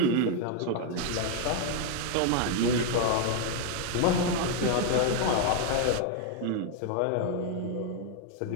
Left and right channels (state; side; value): different; both; correlation 0.00